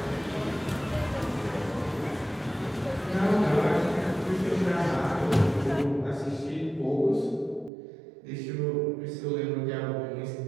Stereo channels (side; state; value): left; drops out; at 7.7 s